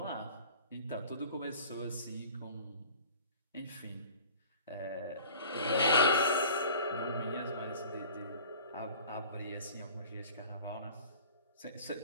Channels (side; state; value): both; inverted; correlation -0.43